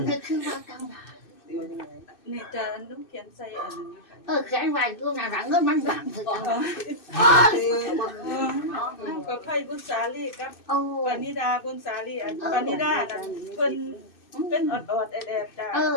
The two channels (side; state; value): right; late; 2.6 ms